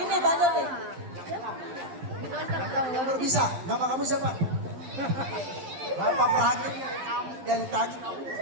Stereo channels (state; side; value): late; left; 11 ms